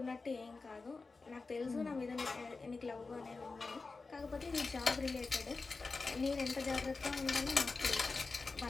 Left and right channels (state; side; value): quieter; right; 4.0 dB